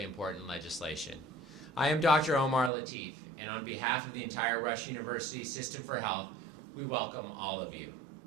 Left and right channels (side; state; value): left; drops out; at 2.7 s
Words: important legislation. I am Dr. Omar Latif, and on behalf of the entire Rush University System for Health, we welcome all of you.